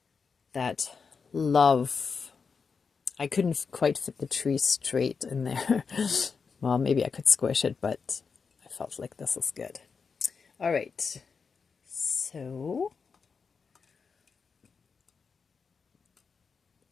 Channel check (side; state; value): right; quieter; 5.4 dB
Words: that love. I couldn't quite fit the tree straight in there. Well, maybe I could squish it, but I felt like this is good. All right. So